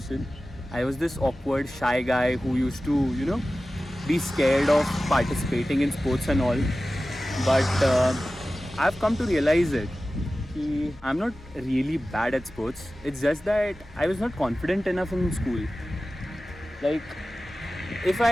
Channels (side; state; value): both; normal; correlation 0.95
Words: I was this awkward, shy guy who used to, you know, be scared of participating in sports and all. But I've come to realize it. I'm not really bad at sports. It's just that I was not confident enough in school. Like, if